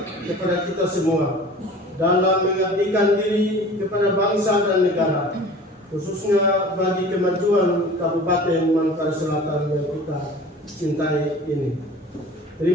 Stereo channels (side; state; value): both; normal; correlation 0.42